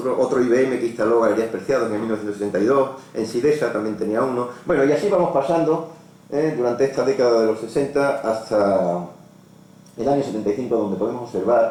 IBM que instaló Galerías Preciados en 1972, en Sidesa también tenía uno. Bueno, y así vamos pasando durante esta década de los 60 hasta el año 75, donde podemos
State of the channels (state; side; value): identical; both; correlation 1.00